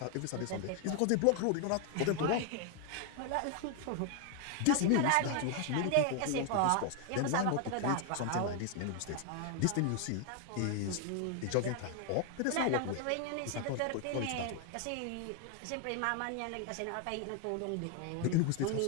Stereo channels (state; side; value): different; both; correlation 0.00